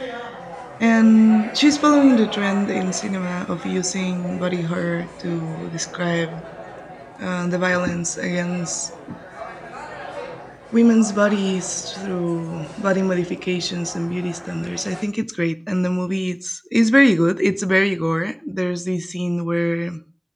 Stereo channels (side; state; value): both; identical; correlation 1.00